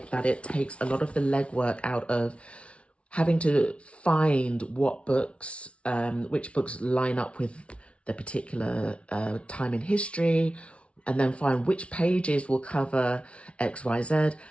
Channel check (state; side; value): late; right; 0.061 ms